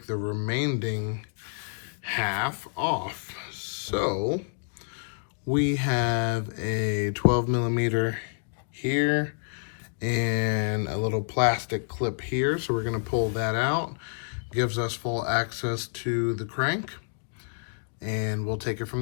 the remaining half off. So we have a 12 millimeter here and a little plastic clip here. So we're gonna pull that out. Gives us full access to the crank, and we'll take it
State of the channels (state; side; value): silent; right; digital silence